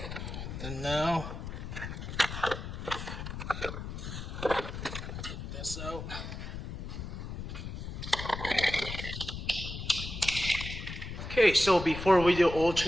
And now take this out. Okay, so before we do oil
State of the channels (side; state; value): left; noise; rumble, 7 dB below the sound